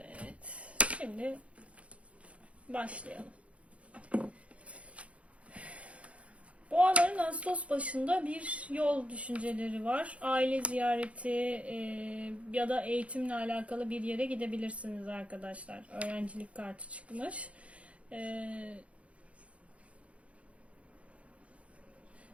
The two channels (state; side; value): late; left; 0.063 ms